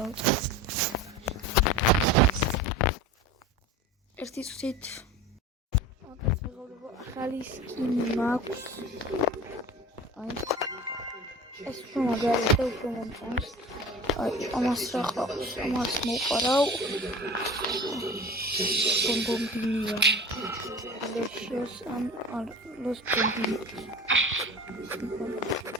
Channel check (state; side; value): normal; both; correlation 0.36